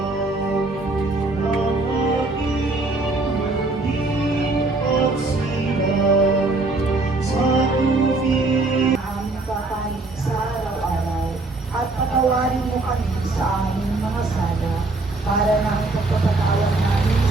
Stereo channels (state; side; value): quieter; left; 3.2 dB